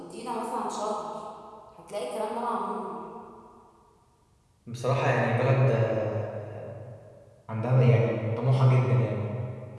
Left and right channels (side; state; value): both; identical; correlation 1.00